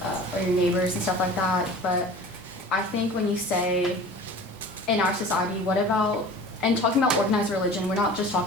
or your neighbors and stuff like that. But I think when you say, in our society, what about, and talking about organized religion, we're not just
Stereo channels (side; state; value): both; normal; correlation 0.41